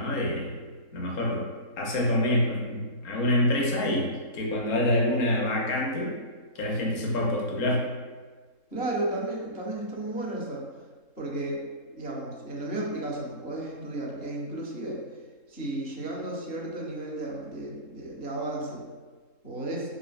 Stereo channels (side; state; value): right; late; 3.7 ms